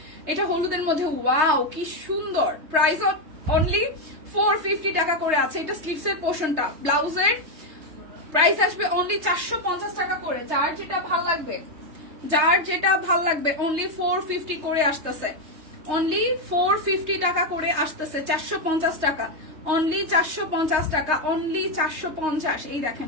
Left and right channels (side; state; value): left; late; 3.2 ms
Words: এটা হলুদের মধ্যে, ওয়াও কি সুন্দর। প্রাইস অনলি 450 টাকা করে আছে। এটা স্লিভস এর পোর্শনটা, ব্লাউজের প্রাইস আসবে অনলি 450 টাকা করে। যার যেটা ভাল লাগবে অনলি 450 করে আসতেছে, অনলি 450 টাকা করে আসতেছে, 450 টাকা, অনলি 450 টাকা, অনলি 450। এই দেখেন